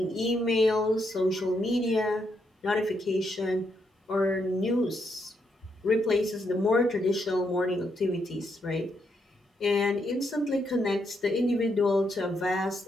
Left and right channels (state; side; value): normal; both; correlation 0.78